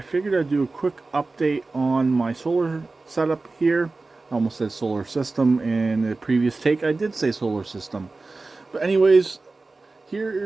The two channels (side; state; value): left; quieter; 3.6 dB